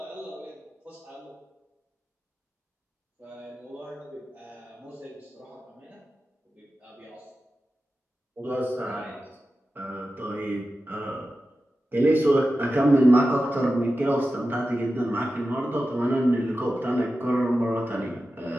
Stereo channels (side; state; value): both; normal; correlation 0.93